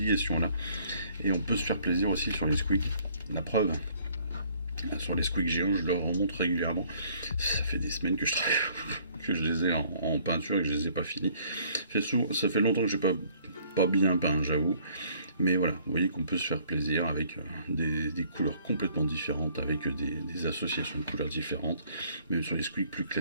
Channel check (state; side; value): inverted; both; correlation -0.61